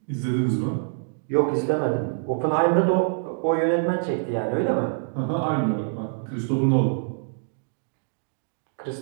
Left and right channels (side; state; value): left; silent; digital silence